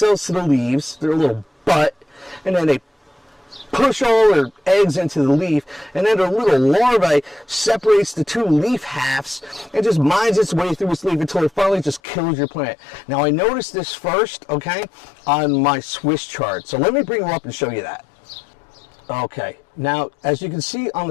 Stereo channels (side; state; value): right; drops out; at 12.0 s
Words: to the leaves, their little butt, and then they push all their eggs into the leaf, and then their little larvae separates the two leaf halves and just mines its way through its leaf until it finally just kills your plant. Now, I noticed this first, okay, on my Swiss chart. So let me bring them up and show you that. Okay, now as you can see on